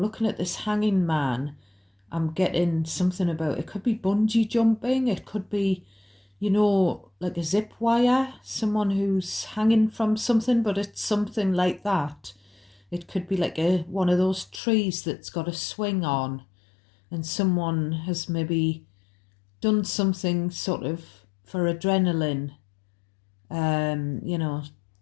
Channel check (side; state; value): right; drops out; at 14.6 s